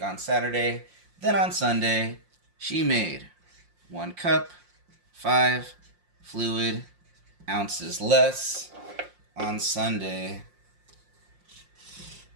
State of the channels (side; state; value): left; late; 5.6 ms